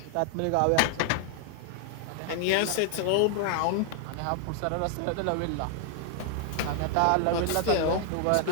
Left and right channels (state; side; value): different; both; correlation 0.00